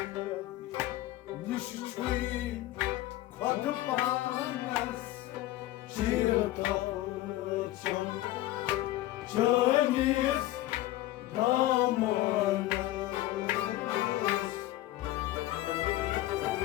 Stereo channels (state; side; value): quieter; right; 15.8 dB